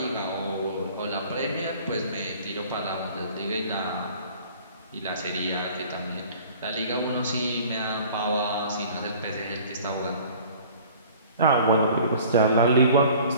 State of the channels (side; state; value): both; inverted; correlation -0.49